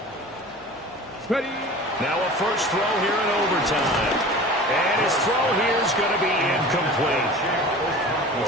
Ready. Now a first throw here in overtime. And his throw here is going to be incomplete.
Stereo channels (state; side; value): normal; both; correlation 0.39